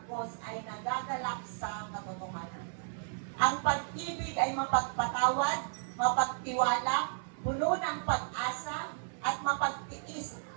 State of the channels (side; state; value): left; silent; 55 dB below the other